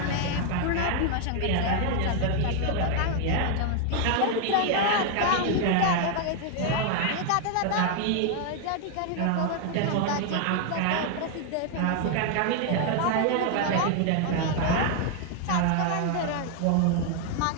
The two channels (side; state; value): both; different; correlation 0.00